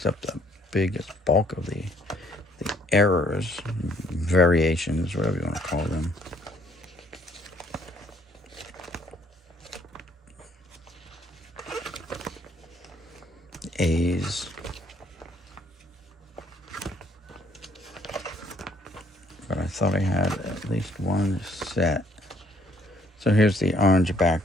up the biggest bulk of the errors, variations, whatever you want to call them. A's. But I thought I had at least one set. So here's the orange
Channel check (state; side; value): normal; both; correlation 0.64